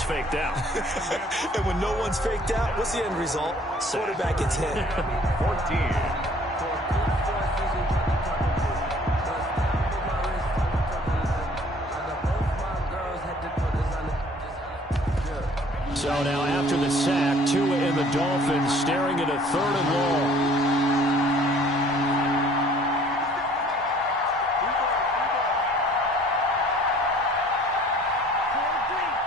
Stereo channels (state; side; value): normal; both; correlation 0.55